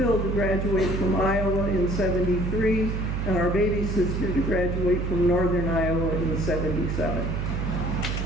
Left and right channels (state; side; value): noise; right; hum, 1 dB below the sound